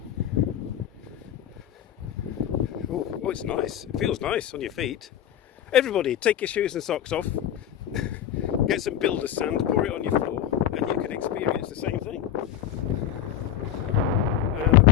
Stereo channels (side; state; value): right; quieter; 10.9 dB